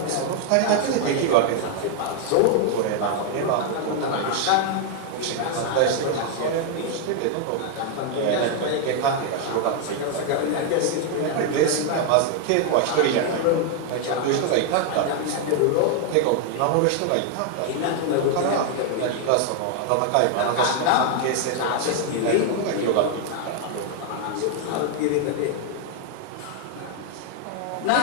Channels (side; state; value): both; different; correlation 0.00